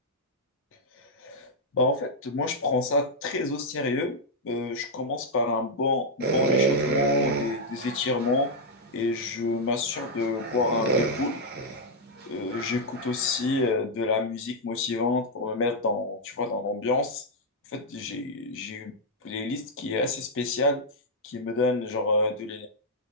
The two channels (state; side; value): normal; both; correlation -0.03